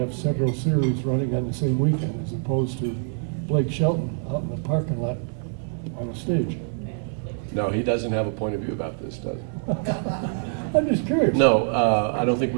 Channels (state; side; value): silent; left; 62 dB below the other